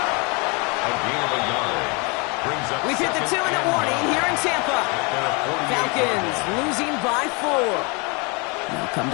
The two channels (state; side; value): quieter; right; 30.5 dB